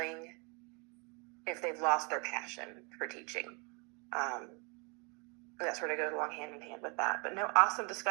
if they've lost their passion for teaching. That sort of goes along hand in hand with that. But no, awesome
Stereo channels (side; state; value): left; quieter; 32.4 dB